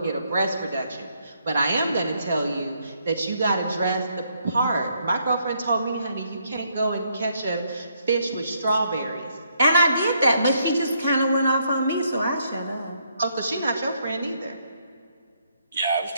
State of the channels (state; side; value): inverted; both; correlation -0.73